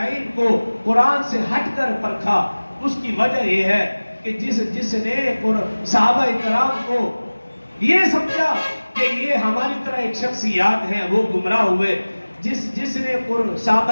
کو قرآن سے ہٹ کر پرکھا, اس کی وجہ یہ ہے کہ جس نے صحابہ اکرام کو یہ سمجھا کہ یہ ہماری طرح ایک شخصیات ہیں, وہ گمراہ ہوئے. جس نے صحابہ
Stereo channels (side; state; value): both; inverted; correlation -1.00